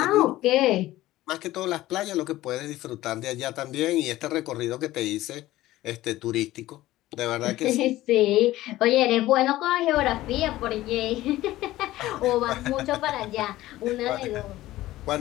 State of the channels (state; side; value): quieter; right; 16.1 dB